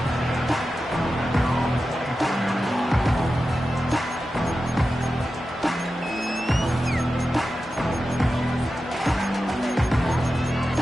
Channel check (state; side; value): normal; both; correlation 0.92